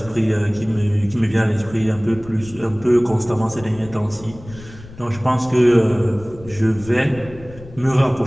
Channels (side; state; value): left; noise; rumble, 18 dB below the sound